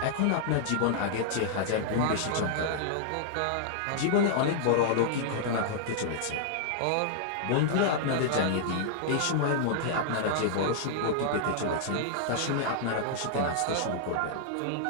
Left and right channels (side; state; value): both; different; correlation -0.01